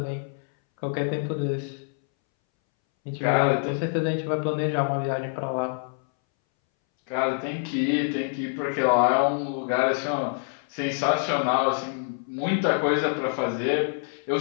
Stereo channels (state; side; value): silent; right; 61 dB below the other